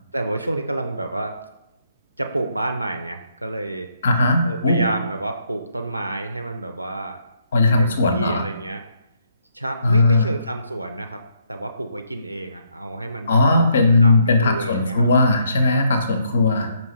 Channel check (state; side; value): inverted; both; correlation -0.73